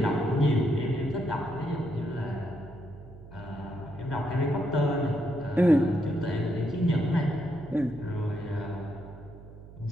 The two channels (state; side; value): noise; right; hum, 18 dB below the sound